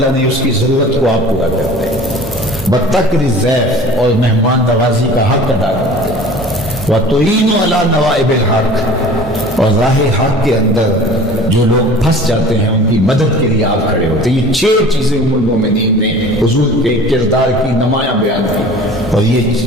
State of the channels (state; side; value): normal; both; correlation 0.43